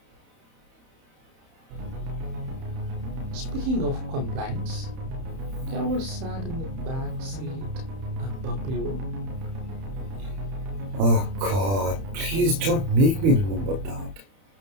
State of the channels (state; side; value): late; left; 31 ms